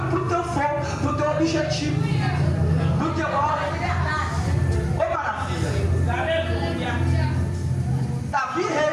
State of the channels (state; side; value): identical; both; correlation 1.00